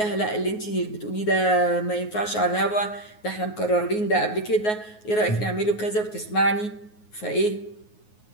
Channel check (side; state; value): right; late; 9.5 ms